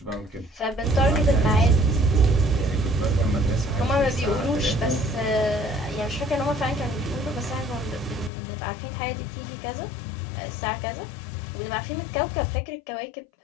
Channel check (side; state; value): right; drops out; at 8.3 s